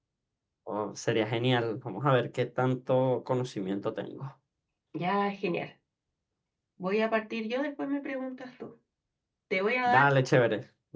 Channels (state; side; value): identical; both; correlation 1.00